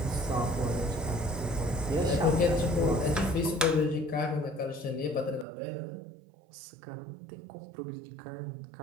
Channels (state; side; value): drops out; left; at 5.5 s